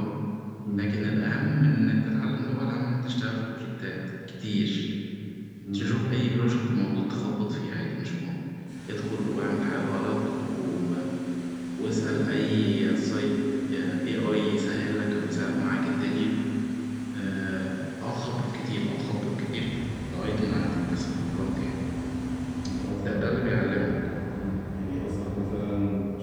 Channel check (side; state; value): both; identical; correlation 1.00